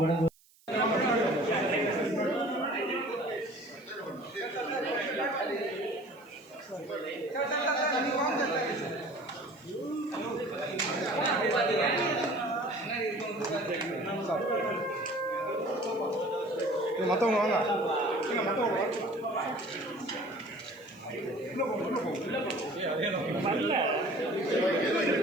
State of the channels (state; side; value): noise; right; hiss, 30 dB below the sound